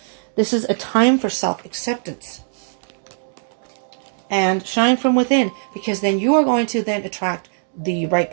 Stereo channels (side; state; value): left; silent; digital silence